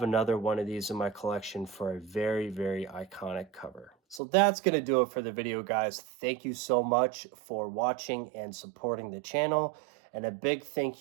another one of these in my collection for a very, very iconic cover. So that's going to do it for the video, guys. Thank you so much for watching and supporting the channel. And a big thank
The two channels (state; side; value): drops out; left; at 4.2 s